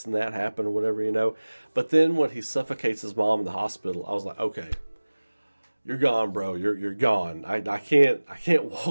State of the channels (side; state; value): both; inverted; correlation -1.00